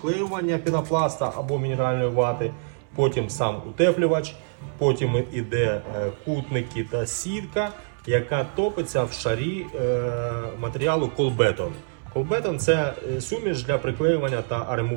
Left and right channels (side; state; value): left; silent; 62 dB below the other